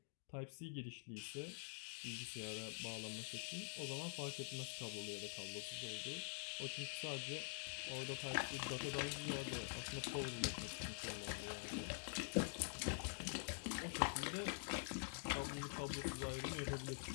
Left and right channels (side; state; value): right; silent; digital silence